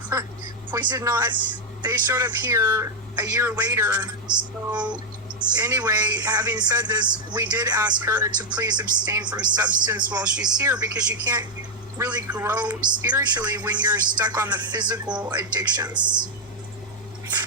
We did not, they showed up here a year later. So anyway, having said this, we did ask her to please abstain from substance while she's here, because you can't really grow spiritually when you're stuck on the physical addictions.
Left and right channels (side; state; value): both; normal; correlation 0.00